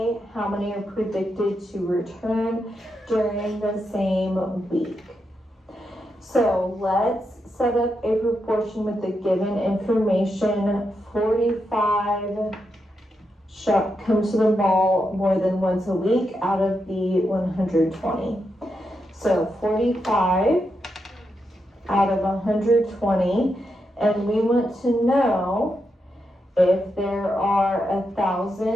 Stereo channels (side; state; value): both; normal; correlation 0.84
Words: how many are predicted to return during the same week? So let's set up a proportion with the given information. 45 come to the mall more than once a week out of the 120. So 45 out of 120, and we want to know if there are